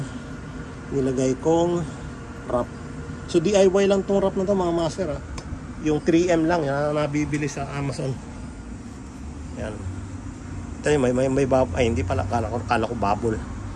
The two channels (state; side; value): identical; both; correlation 1.00